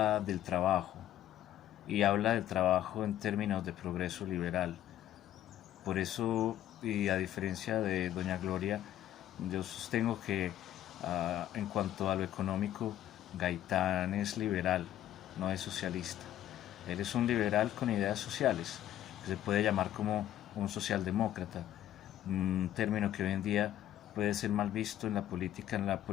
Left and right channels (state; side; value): quieter; right; 12.2 dB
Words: del trabajo, y habla del trabajo en términos de progreso liberal. Por eso, y a diferencia de doña Gloria, yo sostengo que en cuanto a lo económico, Gaitán es liberal, no es socialista. Él es un liberal con ideas sociales, que se puede llamar como un socialdemócrata, un término que hoy en día puede ser mal visto en la política, en la